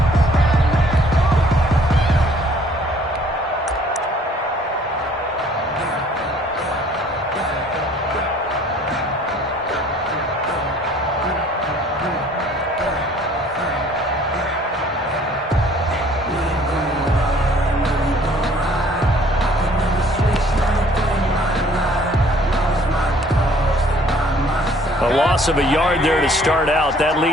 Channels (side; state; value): both; normal; correlation 0.57